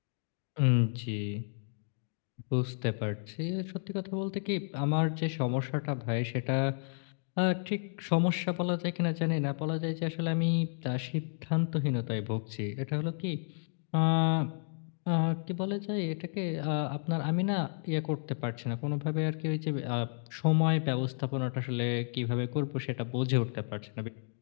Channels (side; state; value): right; silent; digital silence